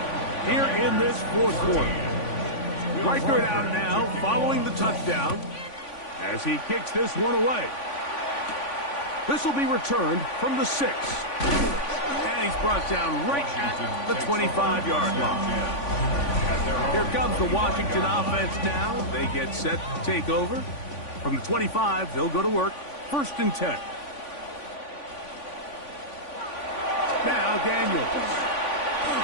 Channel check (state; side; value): late; right; 3.5 ms